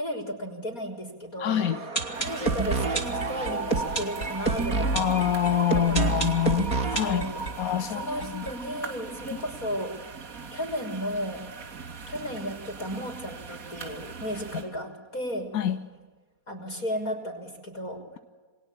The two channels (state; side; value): late; right; 4.2 ms